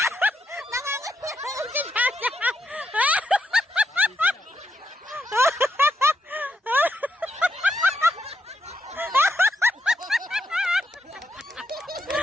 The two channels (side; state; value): both; normal; correlation 0.81